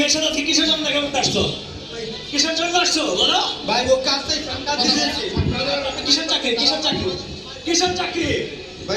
সাথে কিসের জন্য দেখা করতে আসছো কিসের জন্য আসছো বলো ভাই ও কাজটাই কিসের চাকরি কিসের চাকরি কিসের চাকরি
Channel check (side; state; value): both; identical; correlation 1.00